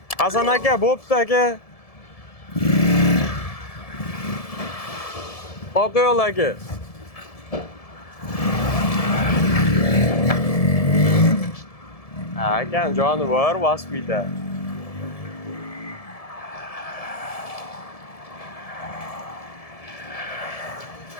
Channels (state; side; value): late; right; 1.7 ms